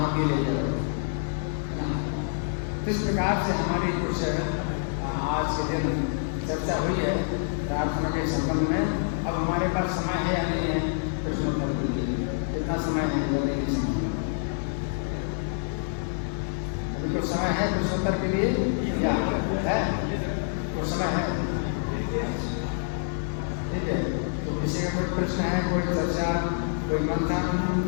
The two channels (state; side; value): silent; right; digital silence